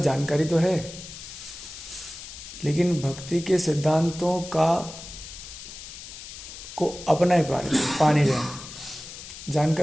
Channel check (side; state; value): left; noise; hiss, 13 dB below the sound